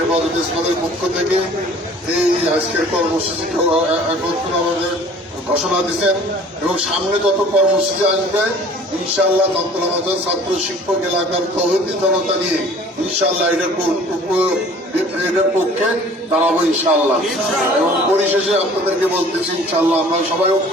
ইসলামের পক্ষ থেকে এই আজকের কর্মসূচি আমাদের ঘোষণা দিচ্ছেন, এবং সামনে যত কর্মসূচি আসবে ইনশাআল্লাহ তন্ত্র ছাত্র শিক্ষক এলাকার তৌহিদি জনতা নিয়ে ইনশাআল্লাহ এটার পক্ষে দাঁড়াবো ইনশাআল্লাহ। এবং পরিশেষে আপনাদেরকে বলতেছি ইনশাআল্লাহ আমরা সবাই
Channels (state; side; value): normal; both; correlation 0.49